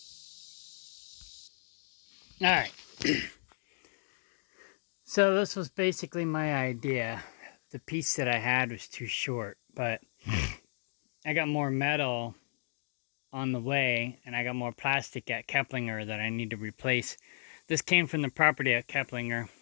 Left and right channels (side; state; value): right; silent; digital silence